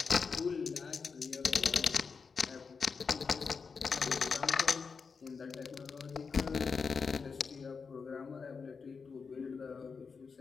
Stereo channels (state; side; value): quieter; right; 5.3 dB